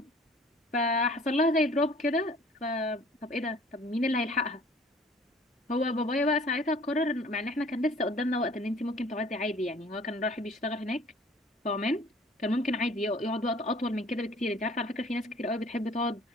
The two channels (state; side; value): normal; both; correlation 0.52